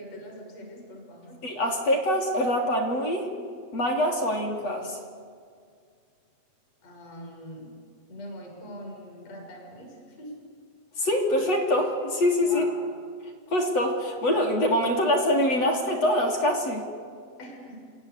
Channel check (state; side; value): late; right; 8.0 ms